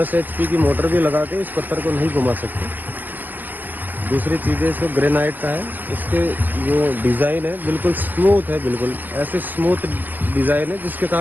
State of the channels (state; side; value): late; left; 0.087 ms